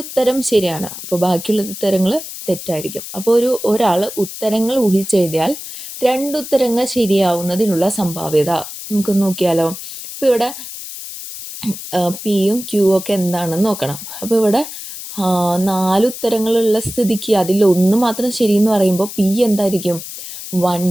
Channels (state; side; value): noise; left; hiss, 10 dB below the sound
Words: ഉത്തരം ശരിയാണ്, അപ്പോൾ ബാക്കിയുള്ള ഉത്തരങ്ങൾ തെറ്റായിരിക്കും. അപ്പോൾ ഒരാൾ ഉത്തരങ്ങൾ ഊഹിച്ചെഴുതിയാൽ 2 ഉത്തരങ്ങൾ ശരിയാവുന്നതിനുള്ള സംഭാവ്യത നമുക്ക് നോക്കിയാലോ. ഇപ്പോൾ ഇവിടെ Pയും Qയും ഒക്കെ എന്താണെന്ന് നോക്കണം. അപ്പോൾ ഇവിടെ 4 ഉത്തരങ്ങളുള്ള സ്ഥിതിക്ക് അതിലൊന്ന് മാത്രം ശരിയെന്ന് പറയുമ്പോൾ P എന്തായിരിക്കും?